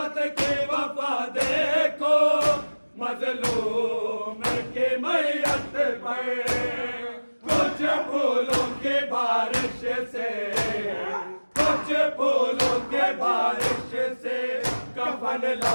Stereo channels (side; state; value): both; inverted; correlation -1.00